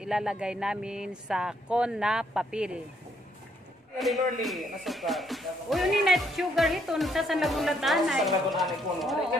namin sa con na papel. Uy, yun yung net sugar ito. Nagsasan lagun latanay. Sa lagun anay po.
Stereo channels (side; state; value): both; normal; correlation 0.71